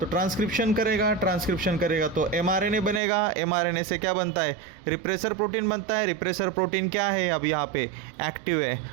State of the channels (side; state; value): left; drops out; at 3.0 s